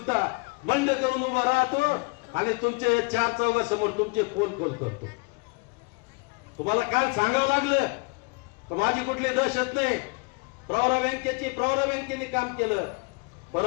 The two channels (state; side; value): quieter; right; 30.3 dB